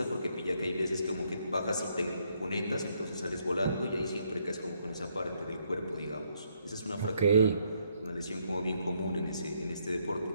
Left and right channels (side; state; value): both; inverted; correlation -0.73